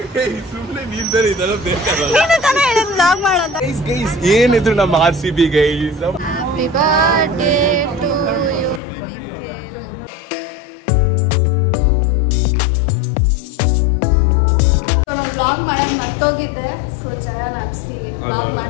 ಸುಮ್ಮನೆ ನೀನ್ ಬೇರೆ ಇದೆಲ್ಲ ಬೇಕಾಗಲ್ಲ. ಏನಿದ್ರು ನಮ್ಮ RCB guys. Happy birthday to you Nikhil. ನಾನು ವ್ಲಾಗ್ ಮಾಡೋದು ಮರ್ತೋಗಿದ್ದೆ. ಸೊ ಜಯ ನಾಪ್ಸಿ ವ್ಲಾಗ್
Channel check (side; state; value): right; drops out; at 8.8 s